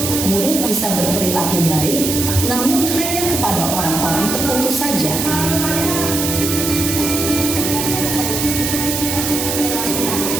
murid bisa berperilaku baik, namun hanya kepada orang-orang tertentu saja.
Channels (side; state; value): right; noise; hiss, 2 dB below the sound